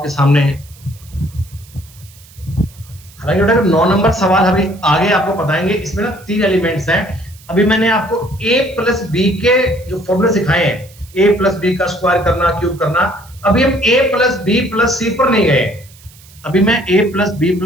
सामने है। हालांकि बेटा 9 नंबर सवाल अभी आगे आपको बताएंगे, इसमें ना 3 एलिमेंट्स हैं। अभी मैंने आपको a प्लस बी के जो फॉर्मूले सिखाए हैं, a प्लस बी का स्क्वायर करना, क्यूब करना, अभी हम a प्लस बी प्लस सी पर नहीं गए। अभी मैं a प्लस बी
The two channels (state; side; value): noise; right; hiss, 24 dB below the sound